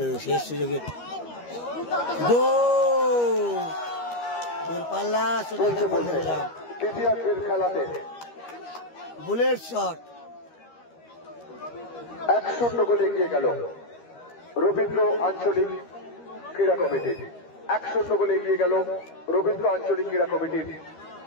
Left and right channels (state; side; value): late; right; 13 ms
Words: শেষ সুযোগে দূরপাল্লা দ্বিতীয়ার্ধের খেলাতে বুলেট শট 1-0 গোলে এগিয়ে গেল রবীন্দ্র আঞ্চলিক ক্রীড়া কমিটি। 1-0 গোলে এগিয়ে গেল রবীন্দ্র আঞ্চলিক ক্রীড়া কমিটির।